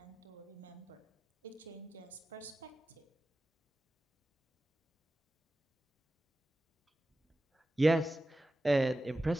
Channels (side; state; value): both; normal; correlation 0.94